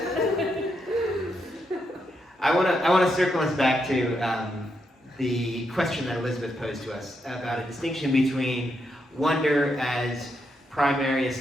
I want to circle us back to the question that Elizabeth posed to us about a distinction between wonder as primary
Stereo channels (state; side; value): normal; both; correlation 0.81